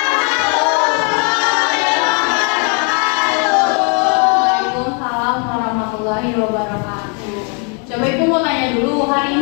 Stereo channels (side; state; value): right; quieter; 37.5 dB